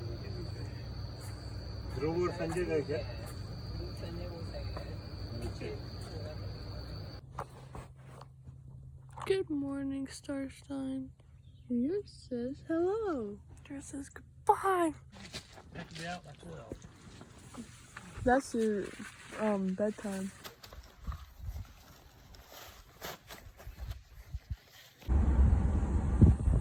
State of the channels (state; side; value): identical; both; correlation 1.00